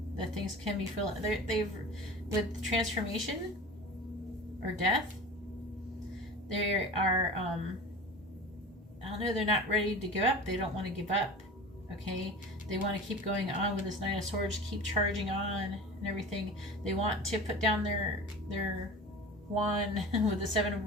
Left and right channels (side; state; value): both; normal; correlation 0.36